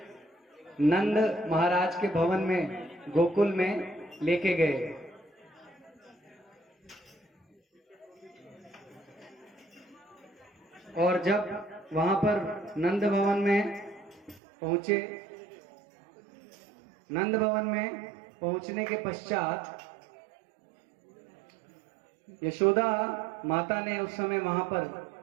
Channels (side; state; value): left; drops out; at 14.4 s